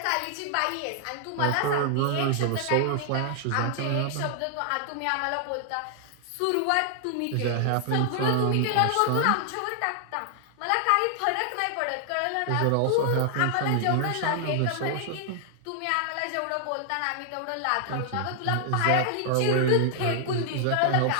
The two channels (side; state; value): both; different; correlation 0.00